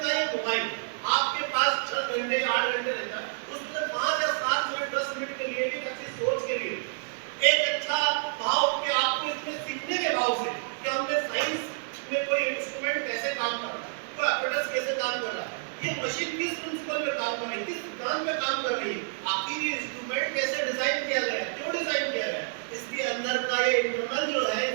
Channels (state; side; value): silent; left; digital silence